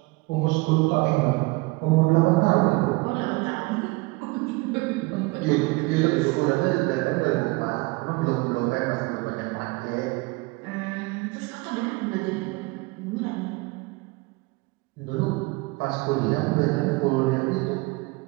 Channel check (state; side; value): quieter; left; 24.8 dB